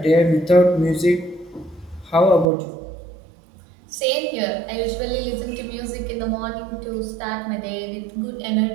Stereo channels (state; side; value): drops out; left; at 2.5 s